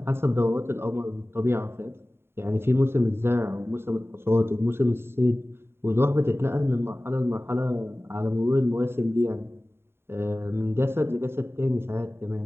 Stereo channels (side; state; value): left; late; 0.11 ms